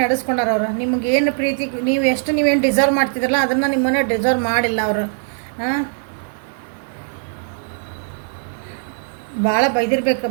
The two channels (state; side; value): silent; left; 55 dB below the other